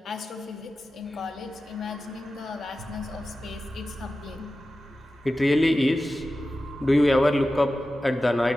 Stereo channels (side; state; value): both; normal; correlation 0.94